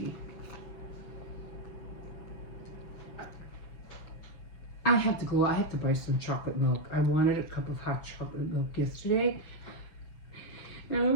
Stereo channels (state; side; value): late; right; 6.8 ms